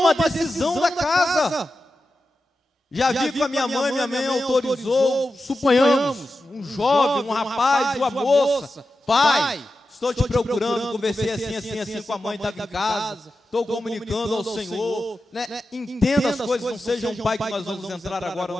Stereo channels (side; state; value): both; normal; correlation 0.91